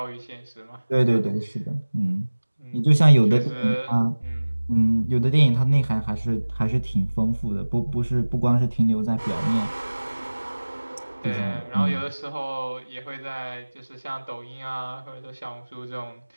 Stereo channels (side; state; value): both; inverted; correlation -1.00